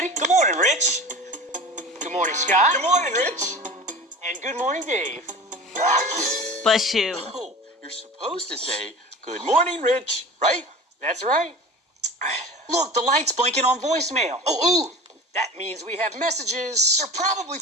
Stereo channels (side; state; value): both; normal; correlation 0.36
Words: Good morning, Rich. Good morning, Scott. Good morning, Rich. And good morning, Dave. Bless you. Oh, you're supposed to say, good morning, Rich, right? That's right. Look, the light's blinking on voicemail. Oh, ooh. That means we have messages. They're probably